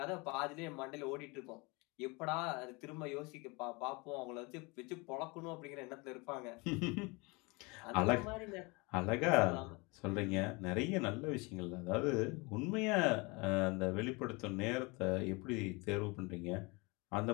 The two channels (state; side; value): quieter; right; 27.2 dB